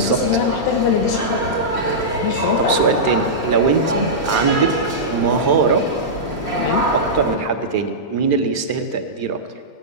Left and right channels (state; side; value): late; right; 13 ms